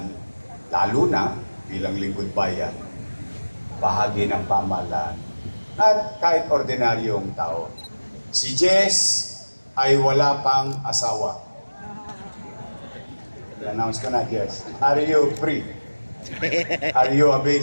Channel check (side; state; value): both; inverted; correlation -1.00